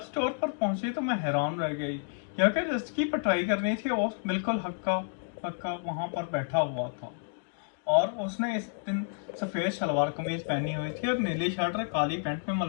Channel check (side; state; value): right; silent; digital silence